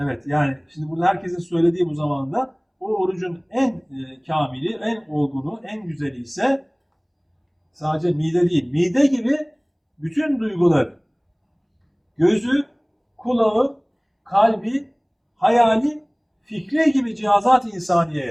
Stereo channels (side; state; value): both; identical; correlation 1.00